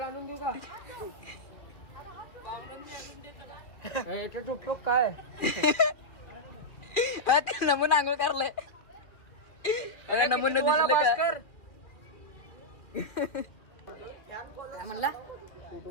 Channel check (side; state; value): right; late; 2.4 ms